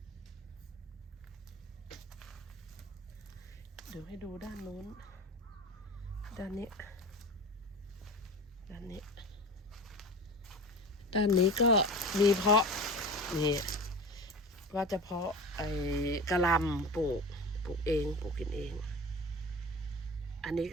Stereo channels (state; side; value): normal; both; correlation 0.33